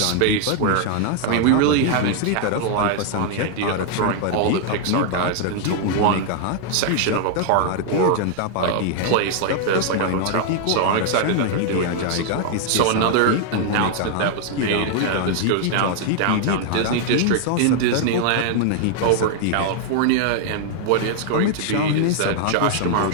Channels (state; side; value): different; both; correlation 0.00